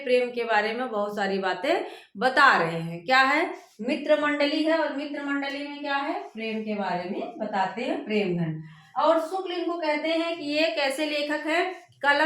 के बारे में बहुत सारी बातें बता रहे हैं। क्या है, मित्र मंडली है, और मित्र मंडली में क्या है, प्रेम के बारे में बताते हैं, प्रेम घन। और शुक्ल इनको कहते हैं कि ये कैसे लेखक है,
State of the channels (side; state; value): both; identical; correlation 1.00